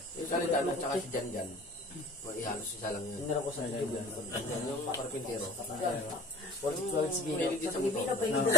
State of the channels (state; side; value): normal; both; correlation 0.43